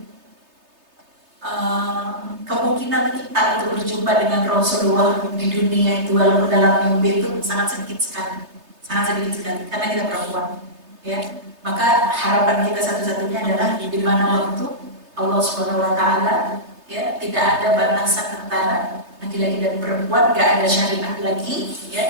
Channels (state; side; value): late; left; 3.3 ms